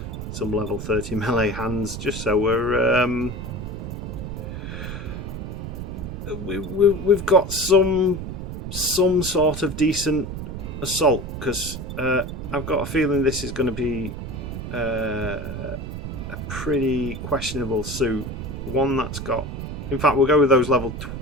some level 30 melee hands, just so we've got some sort of decent assault, because I've got a feeling this is going to be a pretty questionable suit. One that's got, in fact, we'll go with those level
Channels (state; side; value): noise; right; rumble, 7 dB below the sound